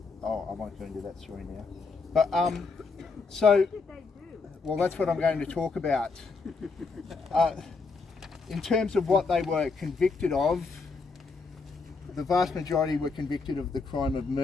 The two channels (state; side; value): quieter; right; 4.3 dB